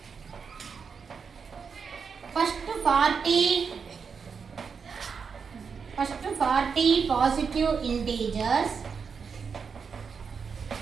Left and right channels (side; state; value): left; quieter; 5.9 dB